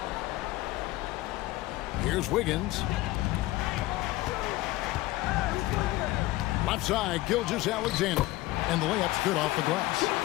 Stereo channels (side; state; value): right; quieter; 18.1 dB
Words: Here's Wiggins. Left side, Gilgeous-Alexander. And the layup's good off the glass.